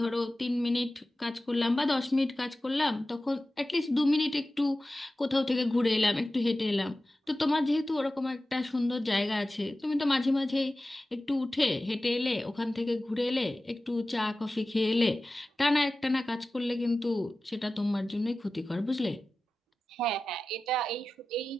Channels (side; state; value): both; normal; correlation 0.95